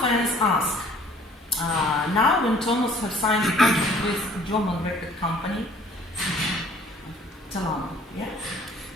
fans ask, now when Thomas has signed a contract with a German record company, Svetlana, yeah?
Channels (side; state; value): both; normal; correlation 0.55